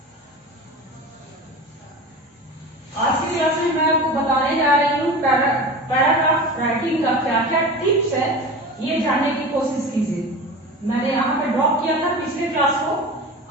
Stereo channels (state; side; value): normal; both; correlation 0.32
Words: आज की class में मैं आपको बताने जा रही हूँ paragraph writing का क्या क्या टिप्स है, ये जानने की कोशिश कीजिए। मैंने यहाँ पे ड्रॉप किया था पिछले क्लास को,